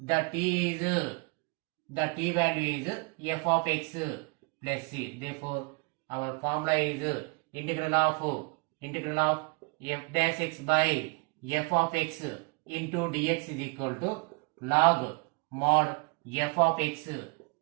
t value is f of x plus c. Therefore, our formula is integral of f dash x by f of x into dx is equal to log mod f of x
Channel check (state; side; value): quieter; left; 30.6 dB